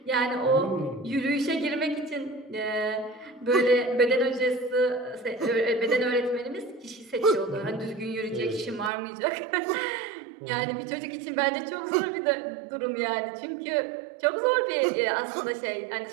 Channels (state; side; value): drops out; left; at 8.9 s